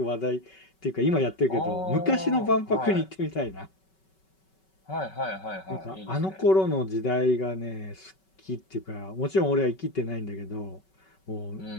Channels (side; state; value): right; late; 5.3 ms